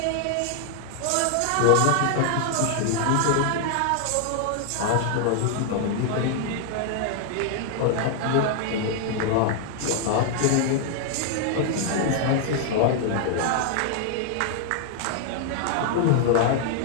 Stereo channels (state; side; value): different; both; correlation 0.00